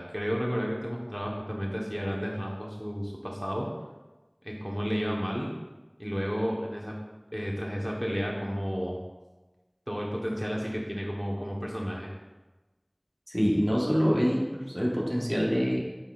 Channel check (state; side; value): identical; both; correlation 1.00